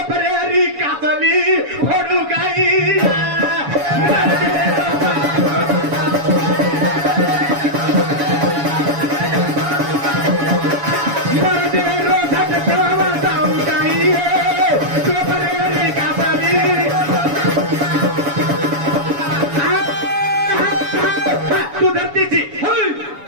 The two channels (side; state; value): left; late; 7.1 ms